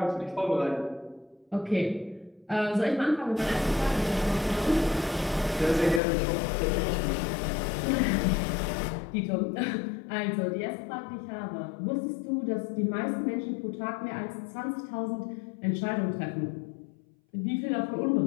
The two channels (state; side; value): drops out; right; at 6.0 s